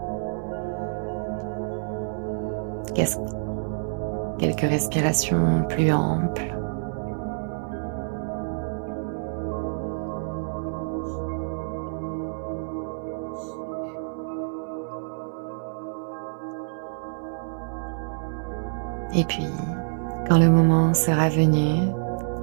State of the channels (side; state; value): left; silent; 57 dB below the other